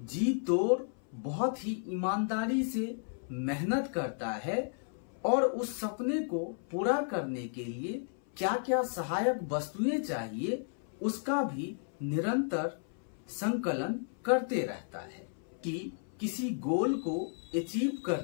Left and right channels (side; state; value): right; silent; 56 dB below the other